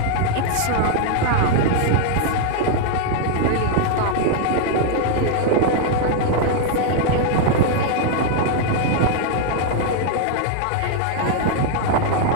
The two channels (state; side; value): different; both; correlation 0.00